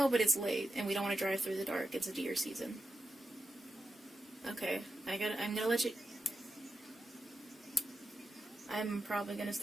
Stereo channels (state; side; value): normal; both; correlation 0.89